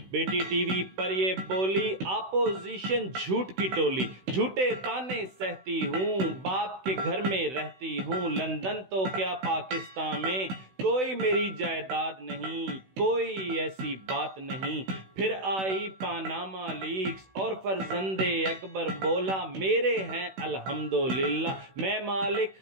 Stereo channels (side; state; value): left; late; 16 ms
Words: بیٹی ٹی وی پر یہ بولی اپوزیشن جھوٹ کی ٹولی، جھوٹے تانے سہتی ہوں، باپ کے گھر میں رہتی ہوں، لندن تو کیا پاکستان میں کوئی میری جائیداد نہیں، کوئی ایسی بات نہیں۔ پھر آئی پاناما لیکس اور فرزند اکبر بولا میرے ہیں الحمدللہ، میں مالک